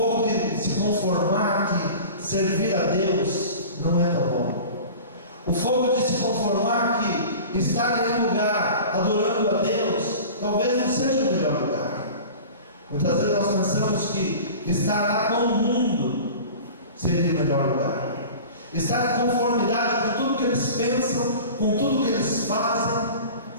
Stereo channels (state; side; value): inverted; both; correlation -0.38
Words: de se conformar que servir a Deus não é tão bom. O fogo de se conformar que estar em um lugar adorando a Deus talvez não seja o melhor lugar. Muitas vezes nós pensamos que estar lá com o mundo seria o melhor lugar. Estar em conformidade com tudo que eles pensam, com tudo que eles fazem,